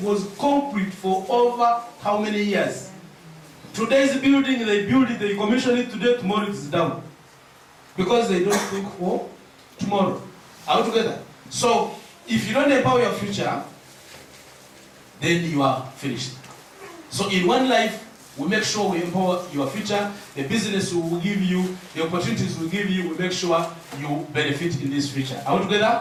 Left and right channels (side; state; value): both; identical; correlation 1.00